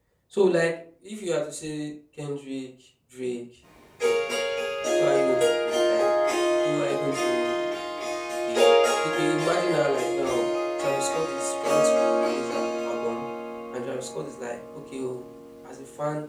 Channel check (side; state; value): both; identical; correlation 1.00